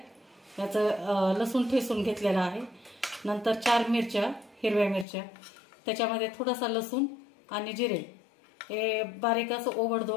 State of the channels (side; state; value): right; drops out; at 5.1 s